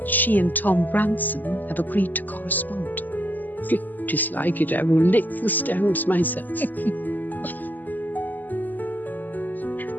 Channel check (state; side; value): late; right; 0.085 ms